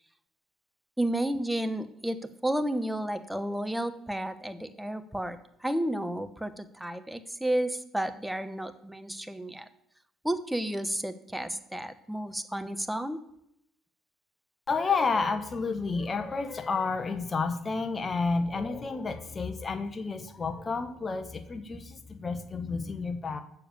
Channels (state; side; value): normal; both; correlation 0.88